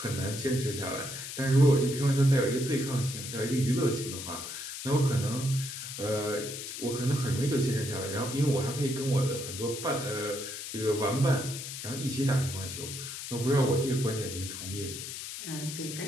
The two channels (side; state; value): left; noise; hiss, 8 dB below the sound